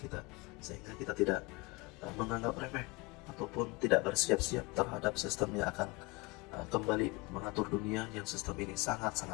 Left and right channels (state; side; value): quieter; right; 25.1 dB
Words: sehingga kita tidak menganggap remeh ataupun tidak bersiap-siap terhadap sistem yang akan kembali mengatur dunia yang sistem ini